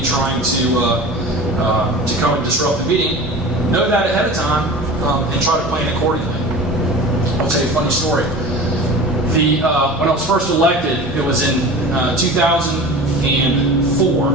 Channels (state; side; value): normal; both; correlation 0.36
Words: trying to come and disrupt the meeting, know that ahead of time and try to plan accordingly. I'll tell you a funny story. When I was first elected, it was in 2004,